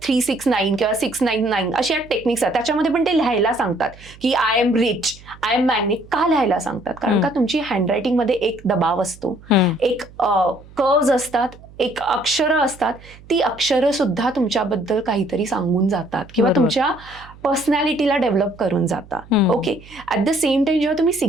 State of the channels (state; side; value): noise; right; hum, 21 dB below the sound